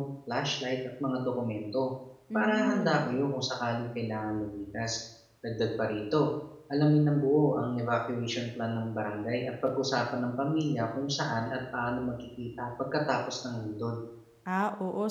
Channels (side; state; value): both; identical; correlation 1.00